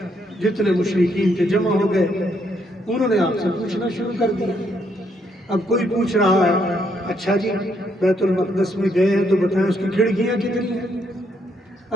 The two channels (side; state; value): both; normal; correlation 0.74